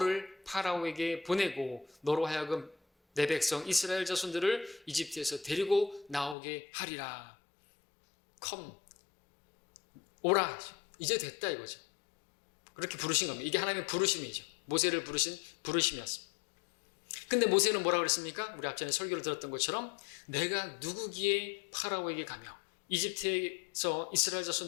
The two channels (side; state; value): right; drops out; at 6.4 s